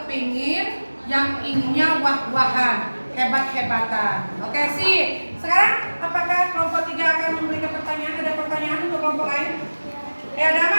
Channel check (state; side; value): inverted; both; correlation -1.00